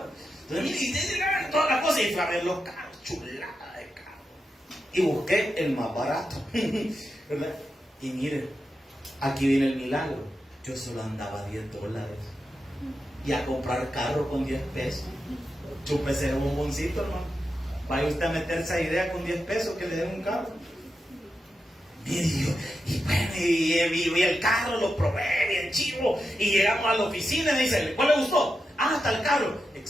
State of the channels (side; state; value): both; normal; correlation 0.88